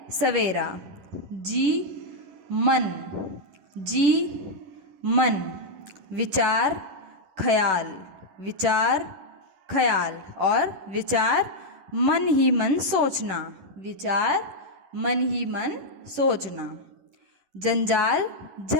सवेरा। जी मन, जी मन। विचार ख्याल, विचार ख्याल। और विचार मन ही मन सोचना, विचार मन ही मन सोचना। जंजाल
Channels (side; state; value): left; late; 11 ms